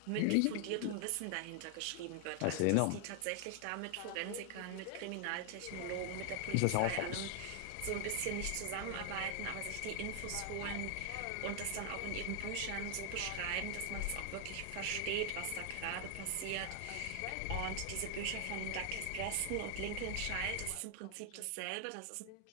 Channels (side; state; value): both; different; correlation 0.00